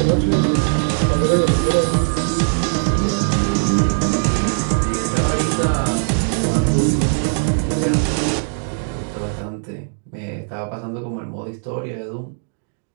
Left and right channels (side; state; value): left; silent; digital silence